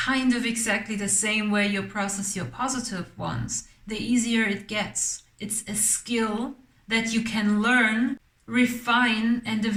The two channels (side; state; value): both; identical; correlation 1.00